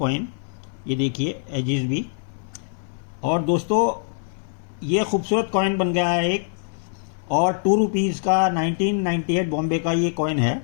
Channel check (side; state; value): right; silent; 57 dB below the other